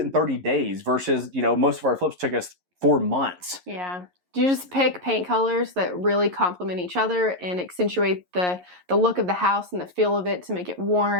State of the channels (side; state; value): left; late; 11 ms